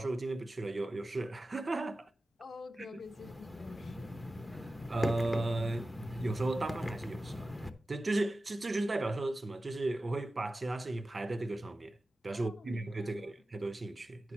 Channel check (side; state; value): both; normal; correlation 0.94